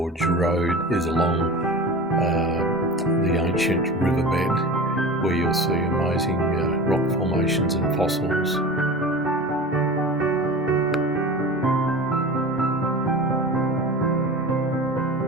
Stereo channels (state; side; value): normal; both; correlation 0.34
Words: road is along the ancient riverbed, where you'll see amazing rock formations and fossils.